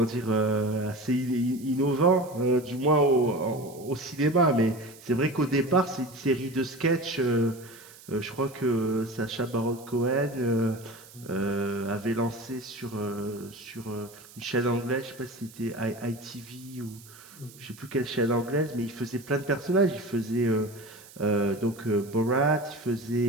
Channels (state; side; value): noise; right; hiss, 21 dB below the sound